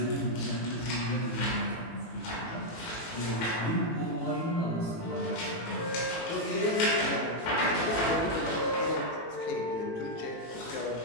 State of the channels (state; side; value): late; right; 18 ms